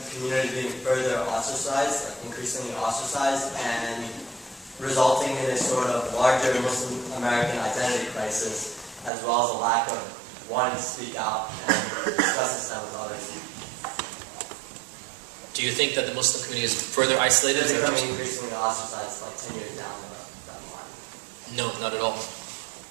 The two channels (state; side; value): drops out; left; at 9.1 s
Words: community being further ostracized, like increasingly ostracized, and resulting in a sort of larger Muslim American identity crisis, as well as a lack of wanting to speak out and discuss this with others? Do you think that the Muslim community is further isolated? Is it becoming increasingly ostracized like 10 years down the line? No, not at all.